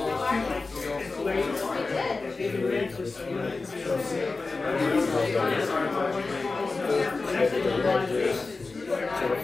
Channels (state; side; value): quieter; right; 3.8 dB